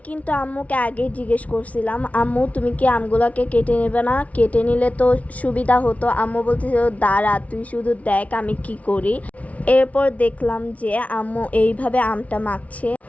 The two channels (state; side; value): late; right; 0.067 ms